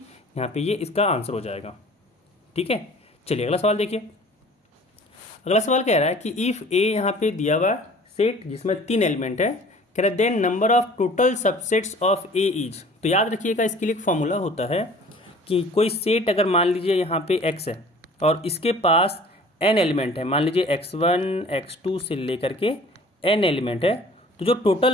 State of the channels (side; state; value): both; normal; correlation 0.48